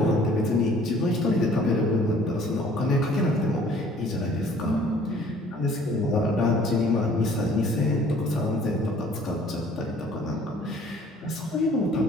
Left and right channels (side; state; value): both; normal; correlation 0.55